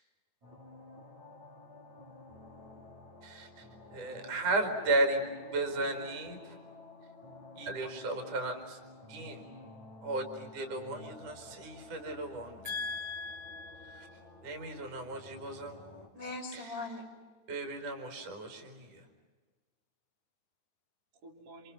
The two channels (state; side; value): late; left; 10 ms